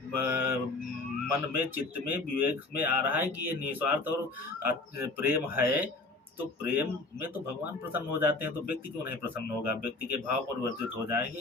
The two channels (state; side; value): quieter; right; 3.3 dB